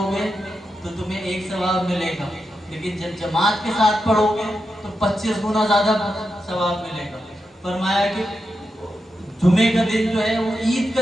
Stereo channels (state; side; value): normal; both; correlation 0.87